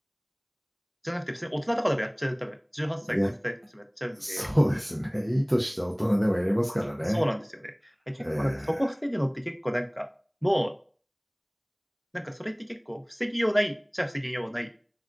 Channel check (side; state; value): both; identical; correlation 1.00